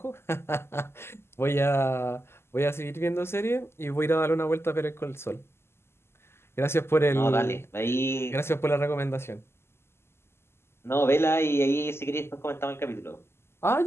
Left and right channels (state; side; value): late; right; 0.12 ms